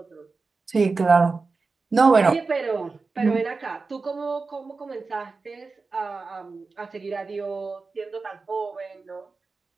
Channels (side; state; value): left; quieter; 4.1 dB